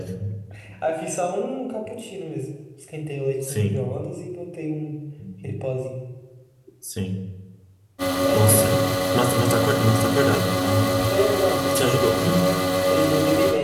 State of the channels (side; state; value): both; identical; correlation 1.00